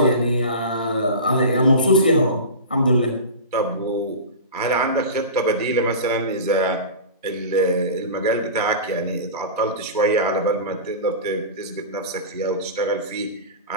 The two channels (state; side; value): inverted; both; correlation -0.30